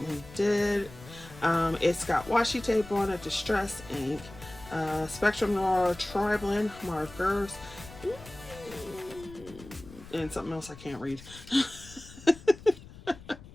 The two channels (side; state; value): left; noise; rumble, 18 dB below the sound